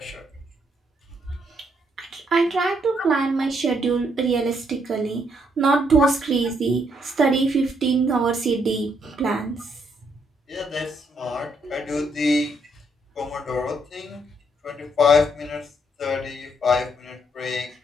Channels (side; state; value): both; normal; correlation 0.72